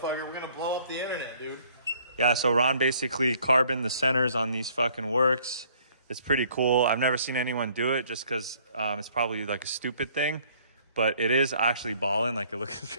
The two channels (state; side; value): inverted; both; correlation -0.60